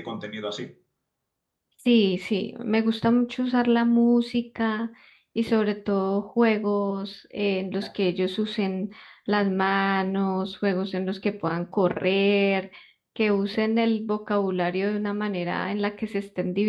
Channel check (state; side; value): identical; both; correlation 1.00